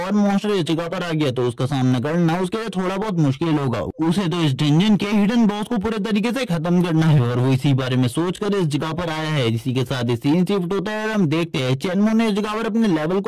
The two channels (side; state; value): both; identical; correlation 1.00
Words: मॉन्स्टर इस जगह पर आ गया तो उसका सामना करना उसके लिए थोड़ा बहुत मुश्किल होगा। उसे तो इस डंजन के हिडन बॉस को पूरे तरीके से खत्म करना है और वो इसी बारे में सोचकर इस जगह पर आया है। इसी के साथ सीन शिफ्ट होता है और हम देखते हैं चेनमू ने इस जगह पर अपने लेवल